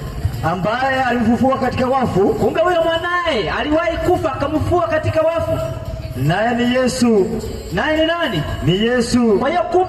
ambaye alimfufua katika wafu. Kumbe huyo mwanae aliwahi kufa akamfufua katika wafu. Naye ni Yesu. Naye ni nani? Ni Yesu. Kwa hiyo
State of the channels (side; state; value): both; identical; correlation 1.00